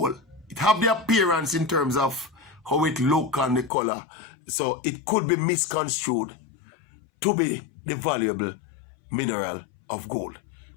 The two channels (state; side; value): drops out; right; at 3.7 s